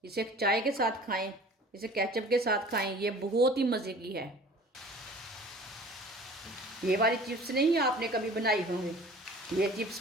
इसे चाय के साथ खाएं, इसे केचप के साथ खाएं। ये बहुत ही मज़े की है। ये वाली चिप्स नहीं आपने कभी बनाई होंगी। ये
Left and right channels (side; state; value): both; normal; correlation 0.45